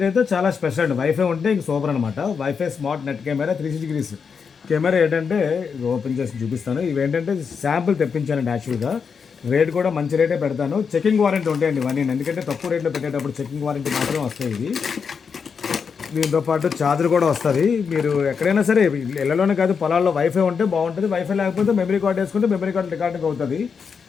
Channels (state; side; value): quieter; right; 6.0 dB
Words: చాలా స్పెషల్ అండి. వైఫై ఉంటే ఇంక సూపర్ అనమాట. Wifi smart net camera 360 degrees camera ఏంటంటే ఇది ఓపెన్ చేసి చూపిస్తాను. ఇవేంటంటే శాంపుల్ తెప్పించానండి యాక్చువల్‌గా. రేట్ కూడా మంచి రేటే పెడతాను. చెకింగ్ వారంటీ ఉంటాయండి ఇవన్నీ. ఎందుకంటే తక్కువ రేట్‌లో పెట్టేటప్పుడు చెకింగ్ వారంటీ మాత్రం వస్తాయి ఇవి. దీంతో పాటు ఛార్జర్ కూడా వస్తుంది. మీరు ఎక్కడైనా సరే ఇళ్ళలోనే కాదు పొలాల్లో వైఫై ఉంటే బాగుంటుంది. వైఫై లేకపోతే మెమరీ కార్డ్ వేసుకుంటే మెమరీ కార్డ్ రికార్డింగ్ అవుతుంది.